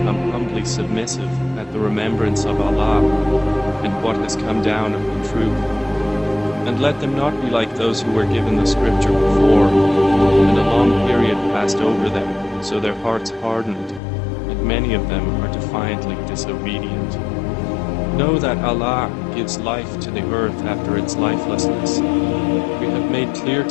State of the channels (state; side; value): drops out; right; at 14.0 s